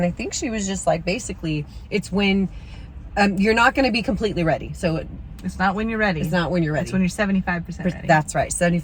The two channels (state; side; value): identical; both; correlation 1.00